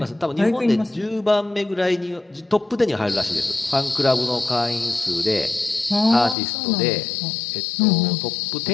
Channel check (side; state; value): right; drops out; at 6.4 s